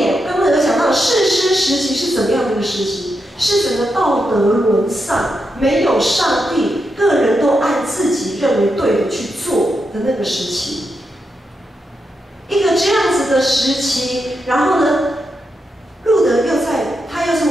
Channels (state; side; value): normal; both; correlation 0.85